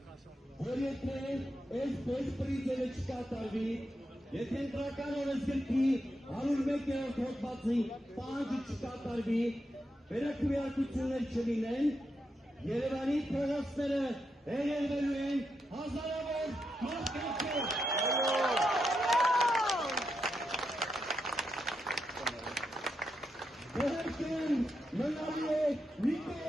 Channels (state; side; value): normal; both; correlation 0.84